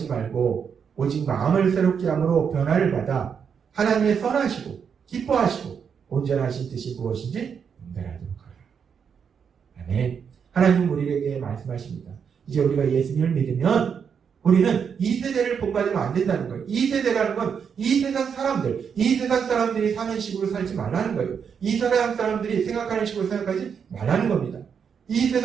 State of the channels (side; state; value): left; quieter; 6.9 dB